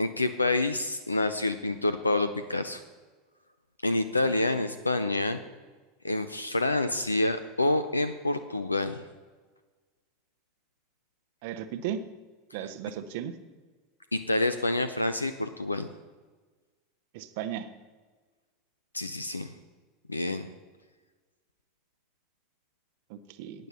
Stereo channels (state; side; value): inverted; both; correlation -0.79